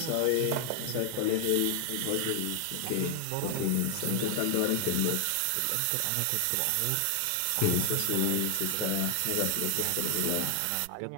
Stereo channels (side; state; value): both; different; correlation 0.00